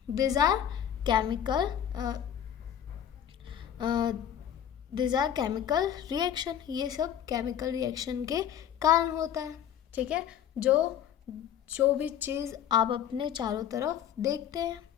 these are chemical these are chemical reaction. ये सब chemical reaction के कारण होता है. ठीक है, जो भी चीज़ आप अपने चारों तरफ देखते हैं.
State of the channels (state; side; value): quieter; right; 9.8 dB